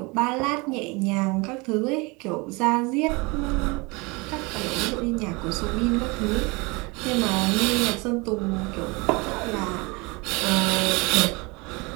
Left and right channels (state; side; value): quieter; left; 26.6 dB